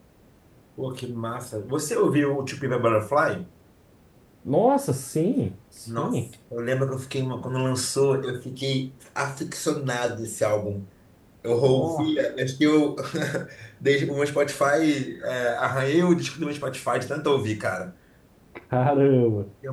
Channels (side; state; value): both; identical; correlation 1.00